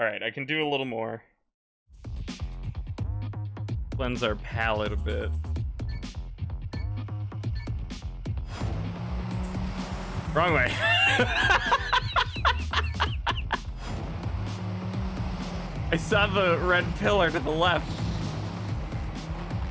I can do a little more. Cleanse our palate a bit. Wrong way. I saw the red pillar to the left.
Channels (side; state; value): both; identical; correlation 1.00